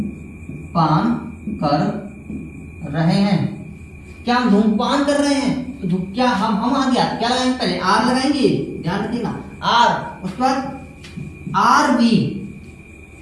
कर रहे हैं, क्या हम धूम्रपान कर रहे हैं, तो क्या हम आ गया, क्या लगाएंगे, पहले आर लगाएंगे, ध्यान रखिएगा, आर, उसके बाद R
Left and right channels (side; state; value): both; identical; correlation 1.00